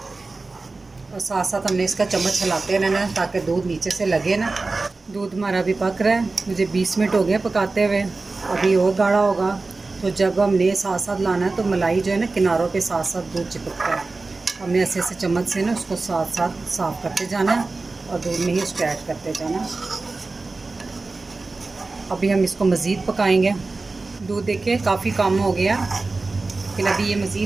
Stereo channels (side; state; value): left; quieter; 3.6 dB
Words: और साथ साथ हमने इसका चम्मच हिलाते रहना ताकि दूध नीचे से लगे ना। दूध हमारा अभी पक रहा है, मुझे 20 मिनट हो गए पकाते हुए, अभी और गाढ़ा होगा। तो जब हमने साथ साथ लाना है तो मलाई जो है ना किनारों पे साथ साथ दूध चिपकता है। हमने ऐसे ऐसे चम्मच से ना उसको साथ साथ साफ़ करते जाना है और दूध में ही उसको ऐड करते जाना है। अभी हम इसको मज़ीद पकाएंगे। दूध देखिए काफ़ी कम हो गया, लेकिन अभी ये